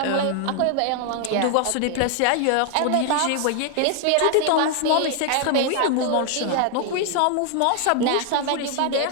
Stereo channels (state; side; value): different; both; correlation 0.00